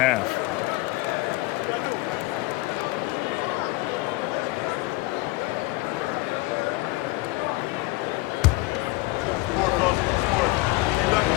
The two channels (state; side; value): quieter; right; 21.2 dB